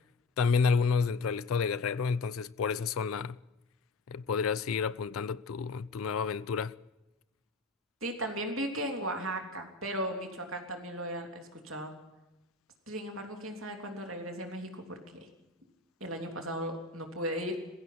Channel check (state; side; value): quieter; right; 3.7 dB